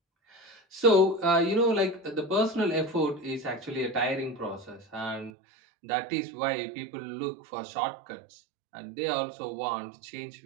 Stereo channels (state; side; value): drops out; left; at 5.3 s